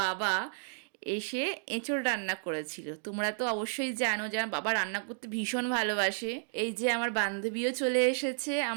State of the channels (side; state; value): left; silent; digital silence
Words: এসে এঁচোড় রান্না করেছিল। তোমরা তো অবশ্যই জানো যে আমার বাবা রান্না করতে ভীষণ ভালোবাসে। এই যে আমার বান্ধবীও চলে এসেছে,